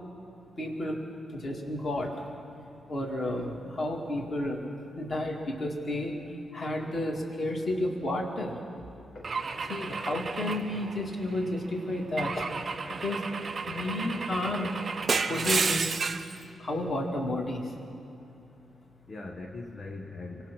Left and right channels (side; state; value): both; normal; correlation 0.80